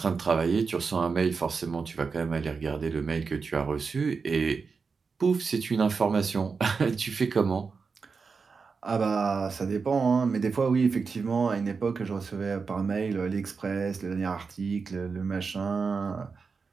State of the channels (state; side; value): quieter; left; 5.0 dB